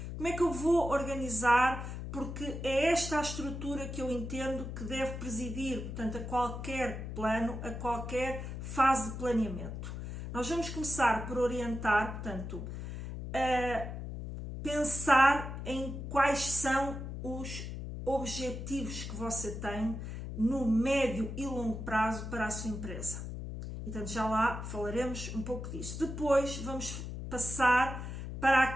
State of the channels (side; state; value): left; noise; hum, 7 dB below the sound